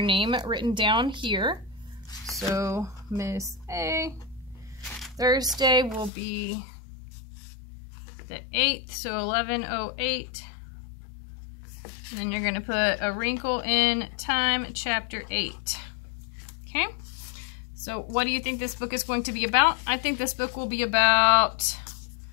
name written down here. So Miss A. Thursday will be the 8th, so 11:08. And then you're going to put A Wrinkle in Time, chapter 8. Okay? So what do you think this book is going to be about? I think this book will be about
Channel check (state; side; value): drops out; right; at 6.1 s